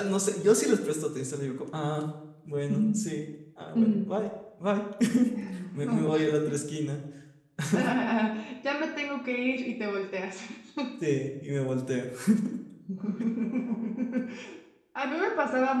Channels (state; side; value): identical; both; correlation 1.00